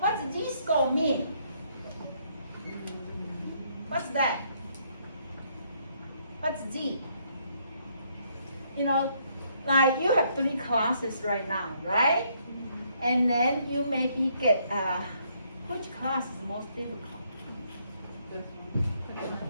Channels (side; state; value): both; inverted; correlation -0.70